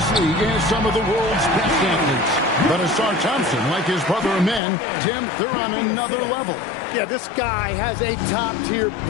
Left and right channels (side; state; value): right; drops out; at 4.6 s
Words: league has some of the world's best athletes. But Asar Thompson, like his brother Amen, Tim, they're on another level. Yeah, this guy has a top-tier